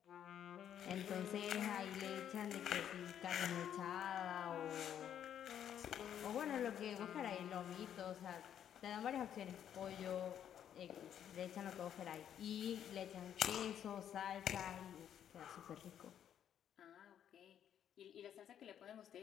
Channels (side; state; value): right; quieter; 9.7 dB